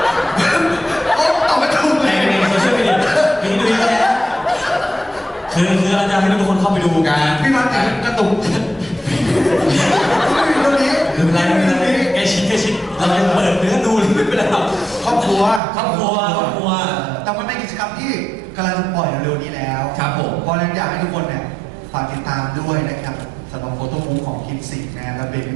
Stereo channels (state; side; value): drops out; left; at 15.6 s